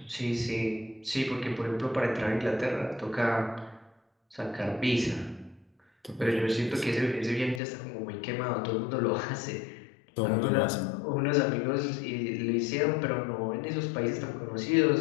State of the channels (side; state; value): right; drops out; at 7.6 s